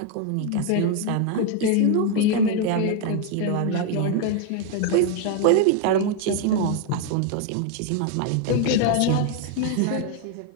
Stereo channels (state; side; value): different; both; correlation 0.01